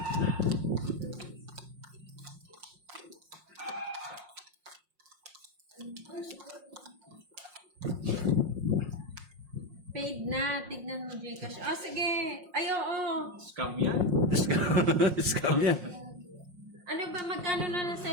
Paid na. Tignan mo, Gcash. Oh, sige. Ay, oo. Scam yan. Scam yan. Ano ba? Magkano na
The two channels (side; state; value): left; late; 5.6 ms